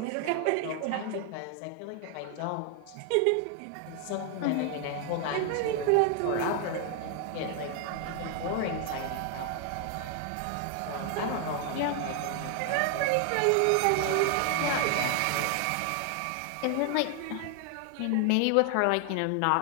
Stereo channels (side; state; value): both; different; correlation 0.00